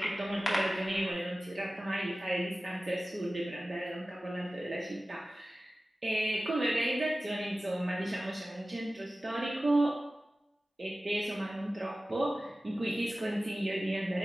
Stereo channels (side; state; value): both; normal; correlation 0.96